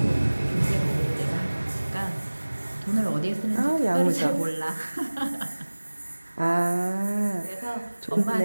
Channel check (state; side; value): inverted; both; correlation -1.00